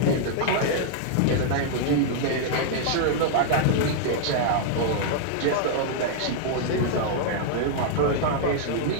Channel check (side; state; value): both; different; correlation -0.01